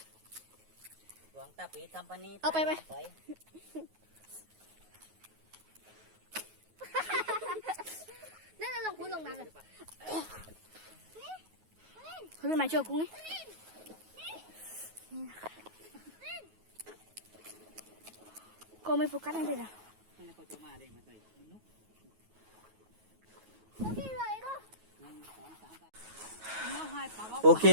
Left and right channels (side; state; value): left; late; 9.3 ms